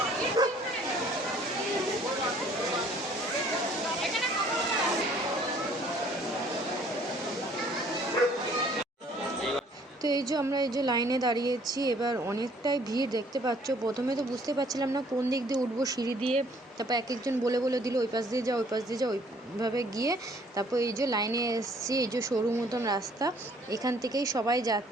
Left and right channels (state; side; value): normal; both; correlation 0.59